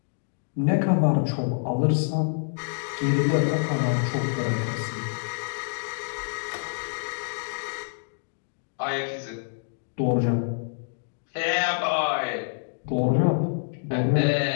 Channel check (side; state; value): right; silent; digital silence